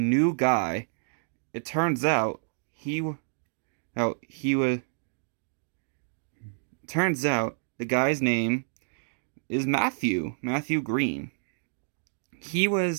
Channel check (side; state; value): left; silent; digital silence